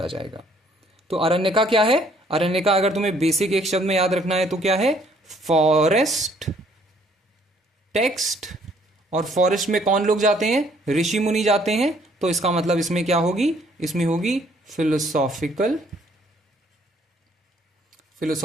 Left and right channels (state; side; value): normal; both; correlation 0.63